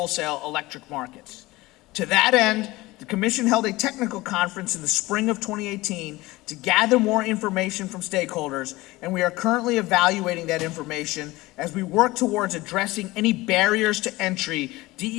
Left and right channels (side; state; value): right; quieter; 19.9 dB